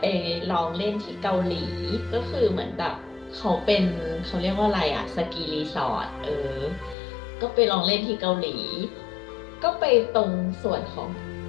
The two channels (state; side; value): drops out; right; at 7.0 s